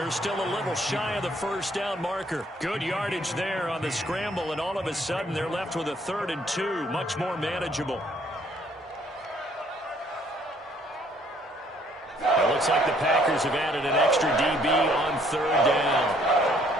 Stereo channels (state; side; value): normal; both; correlation 0.63